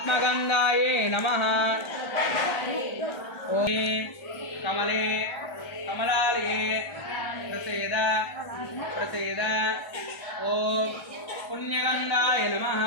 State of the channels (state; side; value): late; right; 1.4 ms